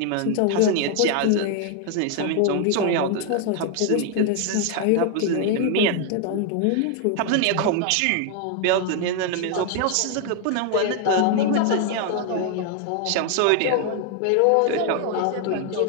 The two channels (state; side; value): different; both; correlation 0.00